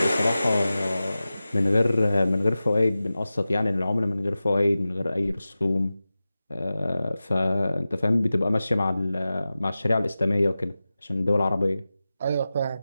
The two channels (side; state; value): both; inverted; correlation -0.95